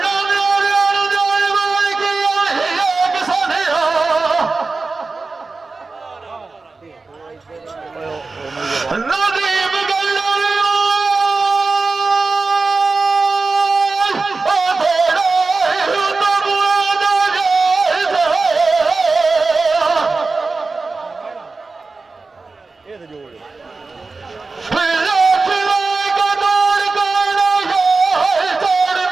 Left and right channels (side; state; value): left; quieter; 3.9 dB